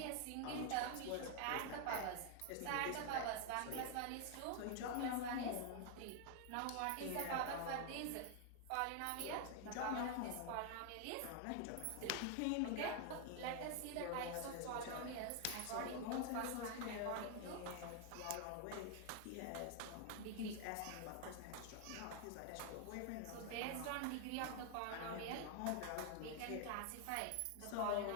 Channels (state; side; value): different; both; correlation 0.00